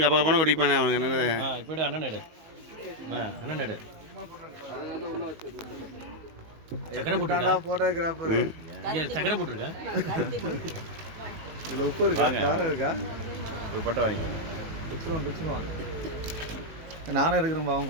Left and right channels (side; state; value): left; late; 19 ms